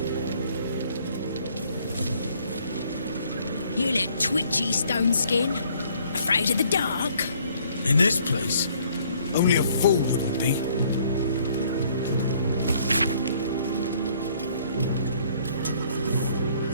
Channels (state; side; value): inverted; both; correlation -0.62